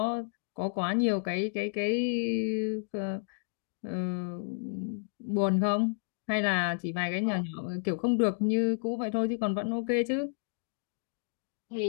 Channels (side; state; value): right; silent; digital silence